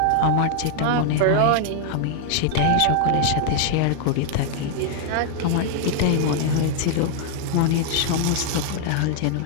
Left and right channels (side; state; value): both; different; correlation 0.00